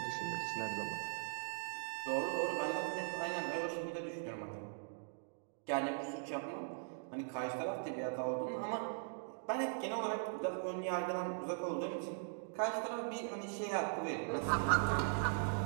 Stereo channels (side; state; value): left; silent; digital silence